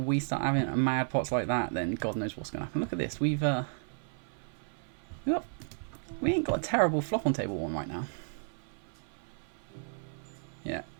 start having mad pots like that, then God knows what's going to happen. Look at this. We ain't got a terrible flop on table 1 right now. Yeah,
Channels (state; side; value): silent; left; 56 dB below the other